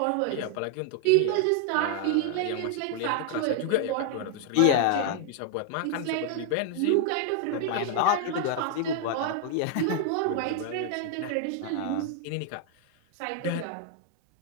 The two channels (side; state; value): both; different; correlation 0.00